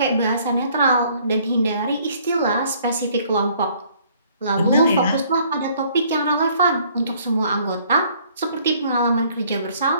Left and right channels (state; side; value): inverted; both; correlation -0.61